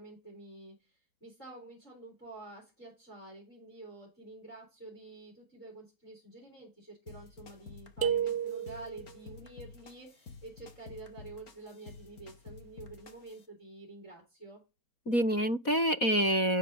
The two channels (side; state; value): right; late; 4.1 ms